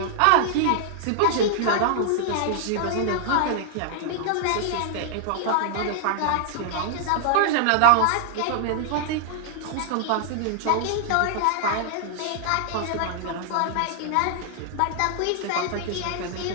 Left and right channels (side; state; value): both; different; correlation 0.00